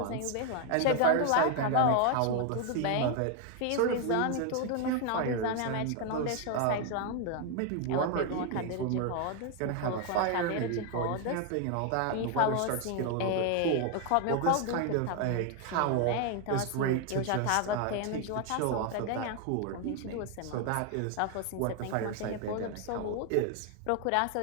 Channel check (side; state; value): both; different; correlation 0.01